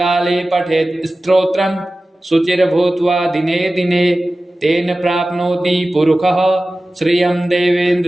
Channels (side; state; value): both; normal; correlation 0.96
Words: पठेत् स्तोत्रं शुचिर्भूत्वा दिने दिने तेन प्राप्नोति पुरुषः श्रियं